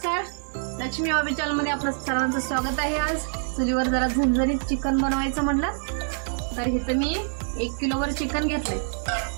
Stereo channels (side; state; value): left; silent; 61 dB below the other